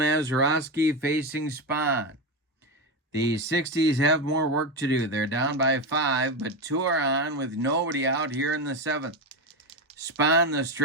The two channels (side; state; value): both; normal; correlation 0.14